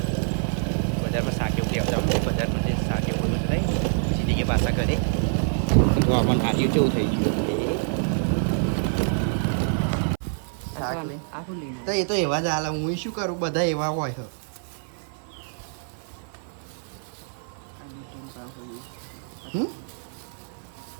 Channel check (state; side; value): silent; left; 57 dB below the other